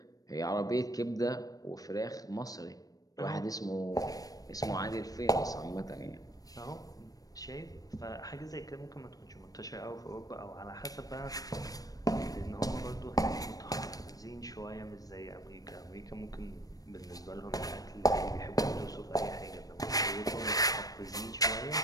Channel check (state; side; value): late; right; 0.18 ms